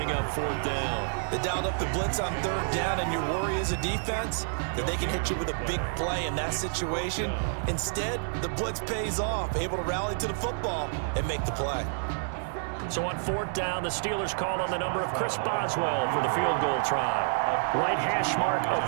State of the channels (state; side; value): silent; left; digital silence